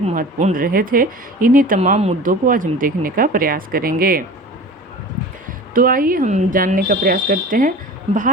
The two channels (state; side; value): normal; both; correlation 0.37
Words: महत्वपूर्ण रहे थे। इन्हीं तमाम मुद्दों को आज हम देखने का प्रयास करेंगे। तो आइए हम जानने का प्रयास करते हैं।